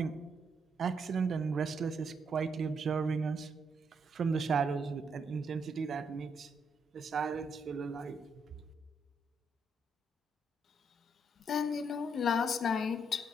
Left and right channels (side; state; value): both; normal; correlation 0.76